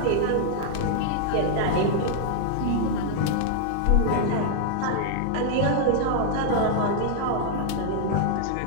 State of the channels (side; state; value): both; different; correlation -0.01